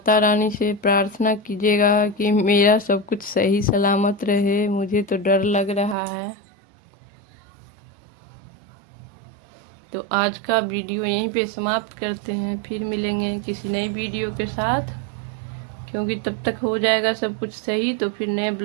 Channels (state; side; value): drops out; left; at 6.0 s